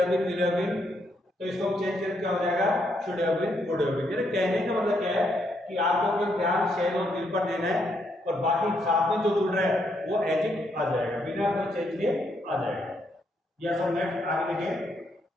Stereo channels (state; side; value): normal; both; correlation 0.75